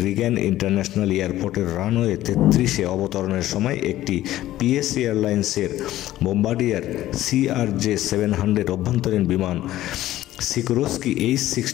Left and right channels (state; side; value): quieter; right; 14.5 dB